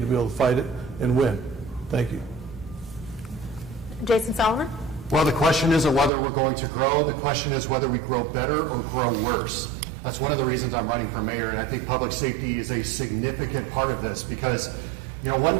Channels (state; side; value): drops out; left; at 6.1 s